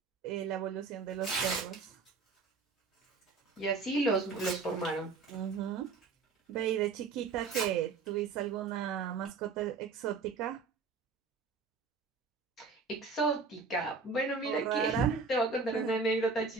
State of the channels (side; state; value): left; quieter; 4.7 dB